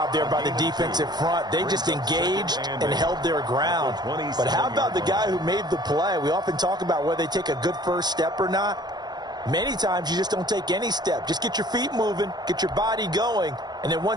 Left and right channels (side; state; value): left; late; 0.20 ms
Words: there by the defensive front. They just engaged and held their ground. But how about the guy who made the play? We often talk about whether they take a good first step or not. Many times you just don't take any step. Just get your feet moving, get your body going, and then